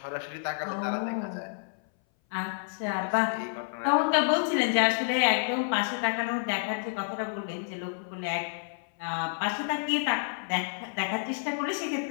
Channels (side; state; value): right; silent; 58 dB below the other